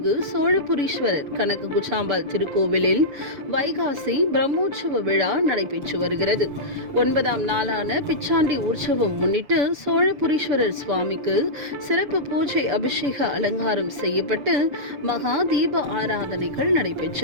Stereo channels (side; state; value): left; late; 7.0 ms